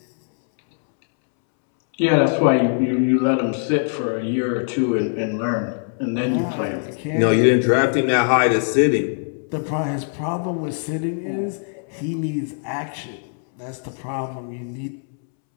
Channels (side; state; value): right; silent; 64 dB below the other